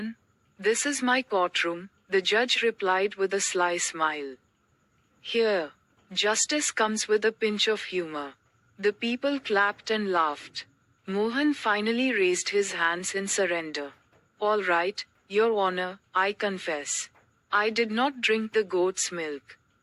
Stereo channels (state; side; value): identical; both; correlation 1.00